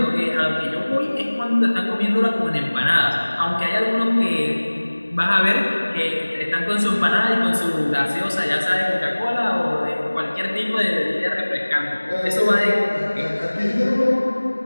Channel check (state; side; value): inverted; both; correlation -1.00